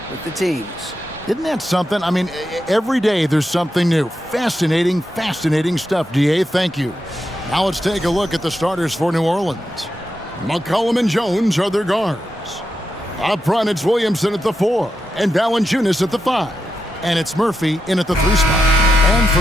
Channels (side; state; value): both; normal; correlation 0.86